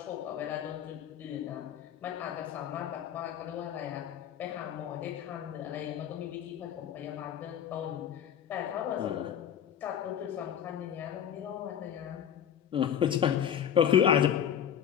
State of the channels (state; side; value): quieter; right; 9.3 dB